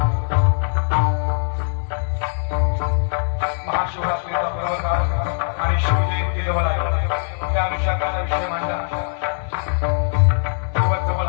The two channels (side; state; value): right; silent; digital silence